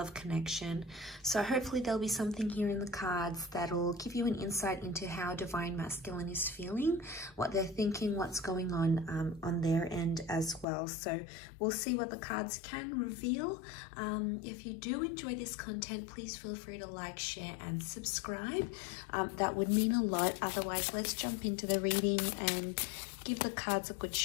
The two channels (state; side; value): drops out; right; at 10.7 s